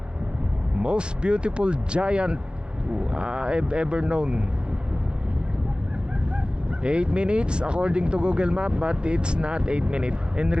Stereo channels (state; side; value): late; left; 0.051 ms